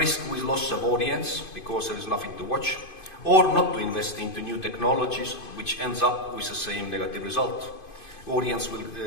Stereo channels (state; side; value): late; right; 2.5 ms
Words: with loss of audience because there is nothing to watch, or not to invest into new technologies, which ends up with the same negative result. Audience